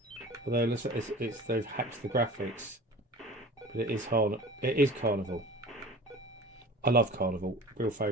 Although they've hacked the graphics, but it is Carnival. I love Carnival. Real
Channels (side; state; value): both; normal; correlation 0.40